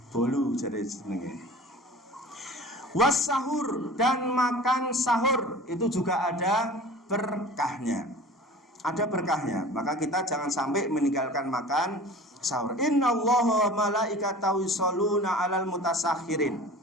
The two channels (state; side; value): normal; both; correlation 0.40